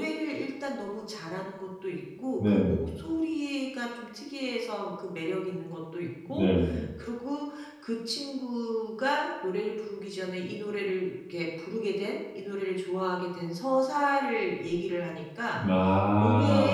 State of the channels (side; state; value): both; identical; correlation 1.00